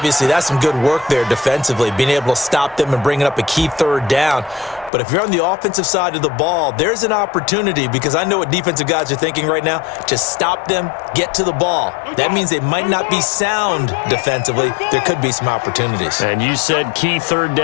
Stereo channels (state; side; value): drops out; right; at 4.9 s